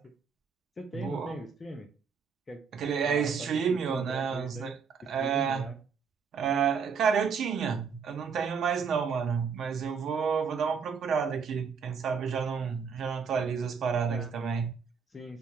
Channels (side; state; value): left; quieter; 6.1 dB